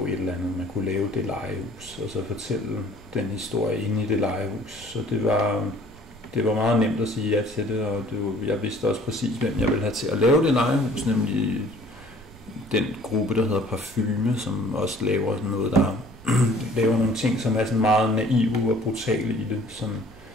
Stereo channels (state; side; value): normal; both; correlation 0.53